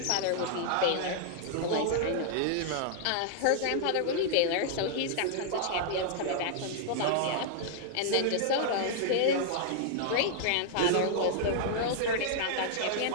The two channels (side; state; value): both; different; correlation -0.01